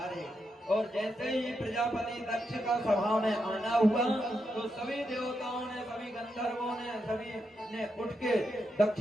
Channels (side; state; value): both; normal; correlation 0.84